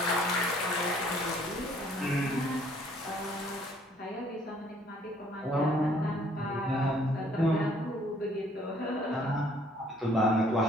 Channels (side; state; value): both; normal; correlation 0.61